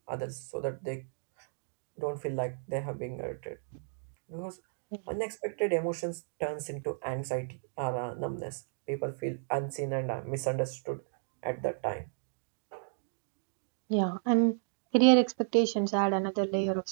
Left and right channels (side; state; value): left; silent; digital silence